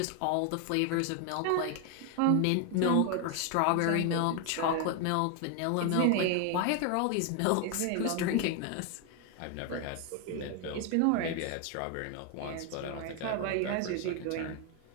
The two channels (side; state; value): both; different; correlation 0.01